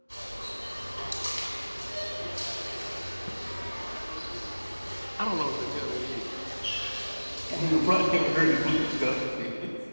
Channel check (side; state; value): both; inverted; correlation -1.00